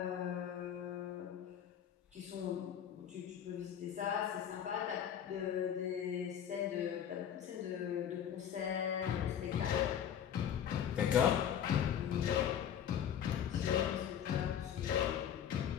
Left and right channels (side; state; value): right; quieter; 9.2 dB